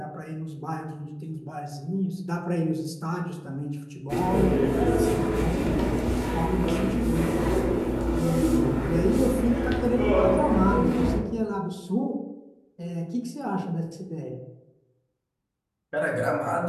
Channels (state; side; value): identical; both; correlation 1.00